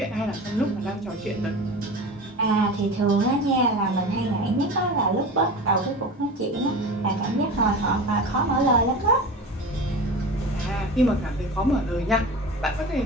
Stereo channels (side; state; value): both; normal; correlation 0.32